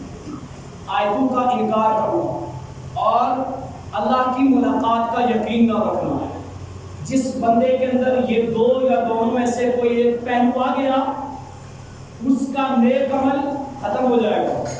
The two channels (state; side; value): identical; both; correlation 1.00